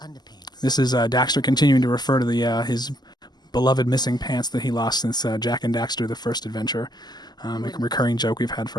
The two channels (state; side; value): late; right; 0.20 ms